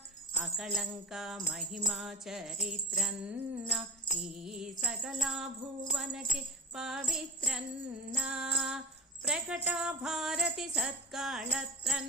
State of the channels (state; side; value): normal; both; correlation 0.29